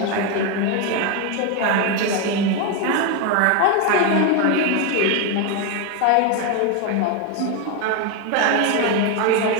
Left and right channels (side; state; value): both; different; correlation 0.02